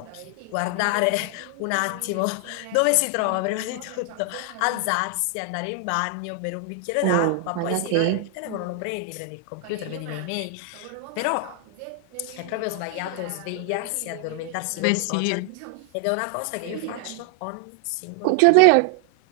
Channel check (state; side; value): different; both; correlation 0.00